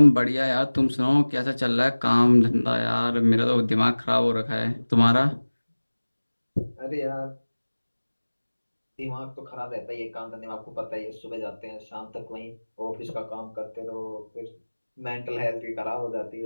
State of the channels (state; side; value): inverted; both; correlation -1.00